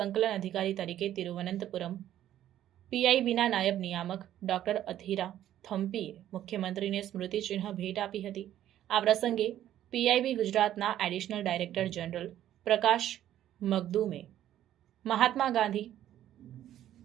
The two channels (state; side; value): quieter; left; 12.0 dB